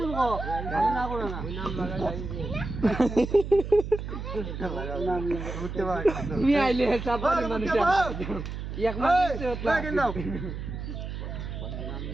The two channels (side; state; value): right; noise; hum, 6 dB below the sound